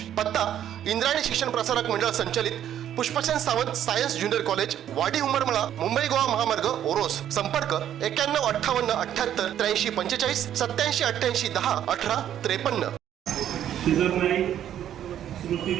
पत्ता इंद्रायणी शिक्षण प्रसारक मंडळ संचालित Pushpasen Sawant science junior college, वाडी उमरमळा, मुंबई गोवा महामार्ग, ओरोस। संपर्क 9158 78 83 45 87 88 10 18 53। श्रीधर नाईक स्मृती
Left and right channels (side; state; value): left; quieter; 10.7 dB